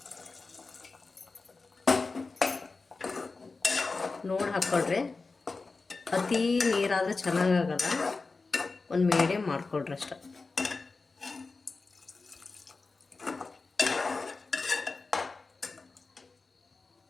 ನೋಡಿ ಹಾಕ್ಕೊಳ್ರಿ. ಅತಿ ನೀರಾದರೆ ಚೆನ್ನಾಗಾಗಲ್ಲ. ಒಂದು ಮೀಡಿಯಮ್ ಮಾಡ್ಕೊಳ್ರಿ ಅಷ್ಟೆ.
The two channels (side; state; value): right; quieter; 3.9 dB